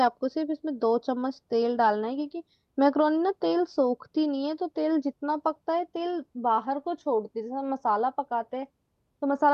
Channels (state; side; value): identical; both; correlation 1.00